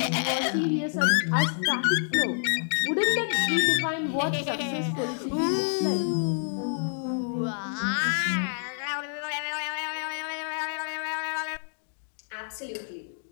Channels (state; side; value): silent; right; digital silence